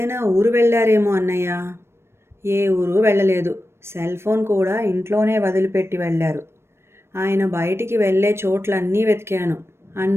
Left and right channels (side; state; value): left; late; 0.12 ms